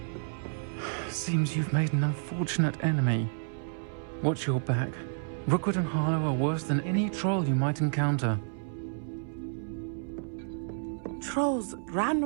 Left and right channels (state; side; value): silent; left; 58 dB below the other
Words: Seems you've made an unfortunate enemy. Watch your back. Rookwood and Harlow are worse than any troll you might encounter. Trolls,